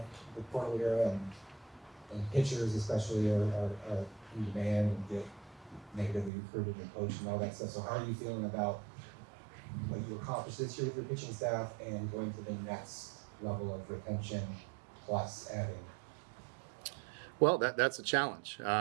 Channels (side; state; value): left; drops out; at 6.3 s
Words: portal era, and pitchers especially are in demand and get negatively recruited and coached and all that stuff. So how are you feeling about what you accomplished this year with your pitching staff and going to the next level of retention plus adding? Well, that's a challenge,